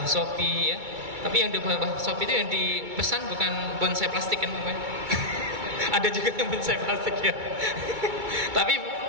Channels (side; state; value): left; late; 2.3 ms